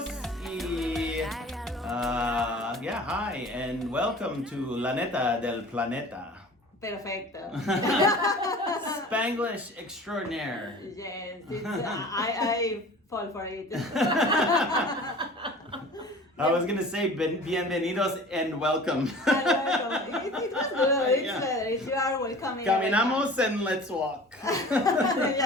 hi, and welcome to La Neta del Planeta. perfecto. Spanglish extraordinaire. Yes, I fall for it. I was gonna say bienvenidos and welcome. It was good. It's Yeah. better. You are welcoming. Caminamos and let's walk. Let's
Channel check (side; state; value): both; normal; correlation 0.42